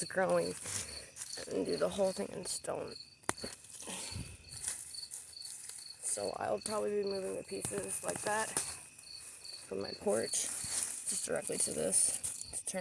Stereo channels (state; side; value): identical; both; correlation 1.00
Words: growing, and do the whole thing in stone. So I'll probably be moving the pieces like that from my porch just directly to this to